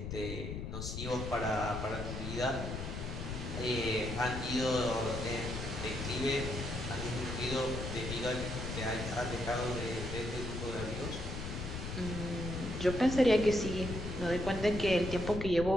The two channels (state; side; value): noise; left; rumble, 5 dB below the sound